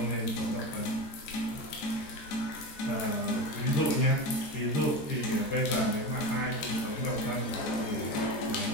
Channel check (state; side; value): late; right; 13 ms